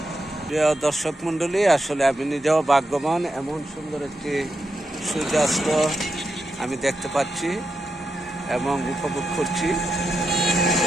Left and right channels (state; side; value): normal; both; correlation 0.86